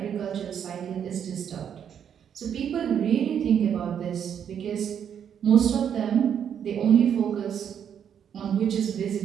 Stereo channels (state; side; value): quieter; left; 8.5 dB